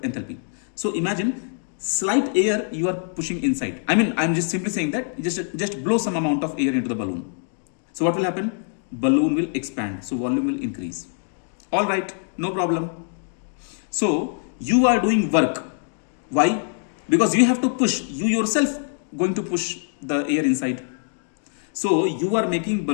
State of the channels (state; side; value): silent; right; 63 dB below the other